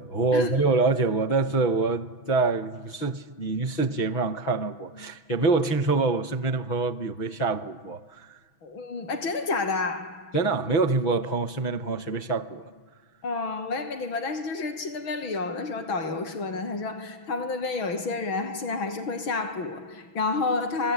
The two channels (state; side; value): late; right; 6.1 ms